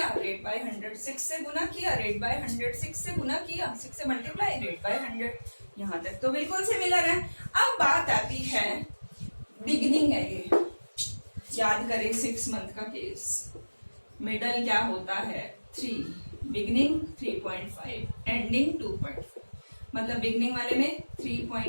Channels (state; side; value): inverted; both; correlation -1.00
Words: रेट बाय 100, 6 से गुना किया, रेट बाय 100, 6 से गुना किया, 6 से मल्टीप्लाई, रेट बाय 100। यहाँ तक तो बिल्कुल सिमिलर है। अब बात आती है, बिगिनिंग है ये, याद करें 6 मंथ का केस। मिडल क्या होता है? 3, बिगिनिंग 3.5, एंडिंग 2.5। मतलब बिगिनिंग वाले में